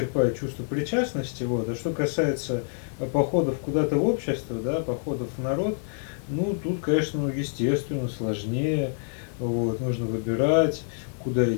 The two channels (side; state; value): right; silent; digital silence